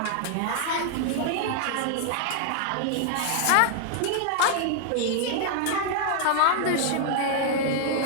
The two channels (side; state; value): both; different; correlation 0.00